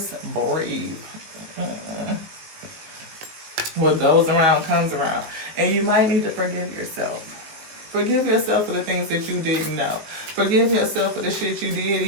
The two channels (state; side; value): late; left; 19 ms